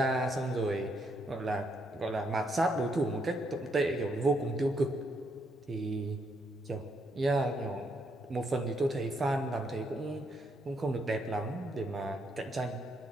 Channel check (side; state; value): both; normal; correlation 0.75